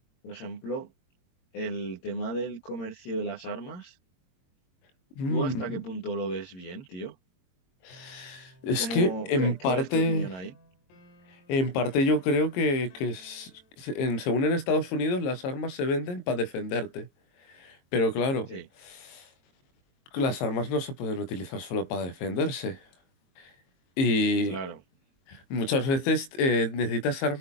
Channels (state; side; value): late; right; 22 ms